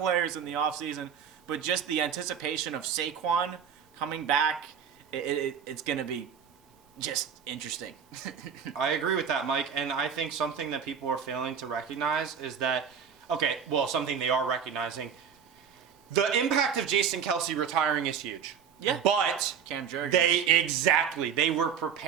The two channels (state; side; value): quieter; left; 7.6 dB